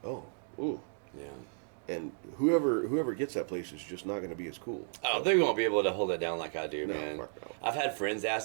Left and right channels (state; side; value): silent; left; digital silence